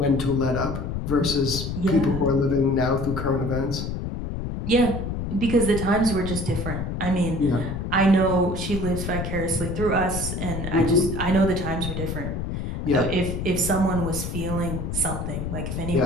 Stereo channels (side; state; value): left; noise; rumble, 4 dB below the sound